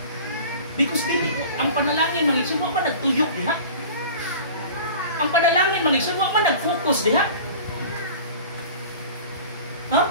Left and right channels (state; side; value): inverted; both; correlation -0.40